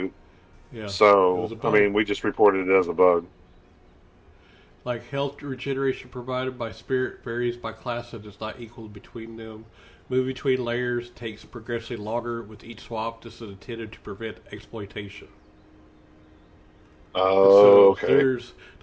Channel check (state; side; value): identical; both; correlation 1.00